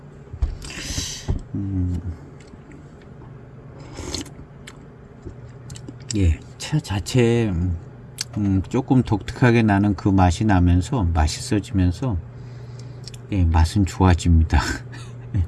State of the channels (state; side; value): identical; both; correlation 1.00